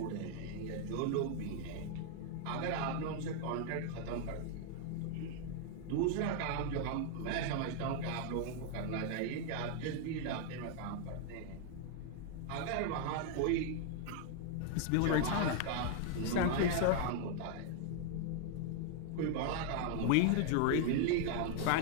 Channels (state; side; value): different; both; correlation 0.00